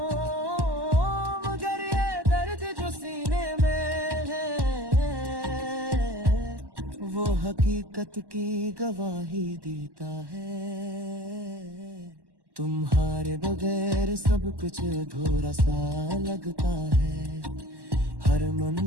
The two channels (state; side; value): late; left; 1.1 ms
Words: मगर ये दर्द जो सीने में है वो हकीकत की गवाही देता है। तुम्हारे बगैर सब कुछ अधूरा सा लगता है, हर